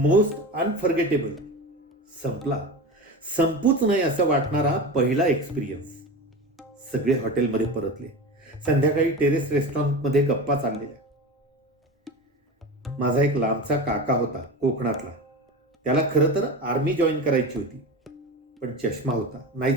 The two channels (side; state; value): both; normal; correlation 0.28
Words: unforgettable. संपला. संपूच नाही असं वाटणारा पहिला एक्सपिरियन्स. सगळे हॉटेलमध्ये परतले. संध्याकाळी टेरेस रेस्टॉरंटमध्ये गप्पा चाललेल्या. माझा एक लांबचा काका होता कोकणातला. त्याला खरं तर आर्मी जॉईन करायची होती, पण चष्मा होता, नाही